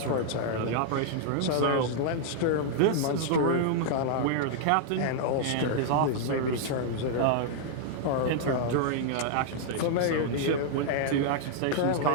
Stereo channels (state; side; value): different; both; correlation -0.01